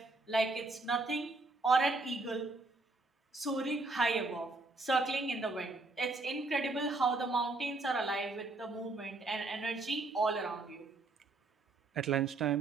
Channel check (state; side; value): quieter; left; 3.3 dB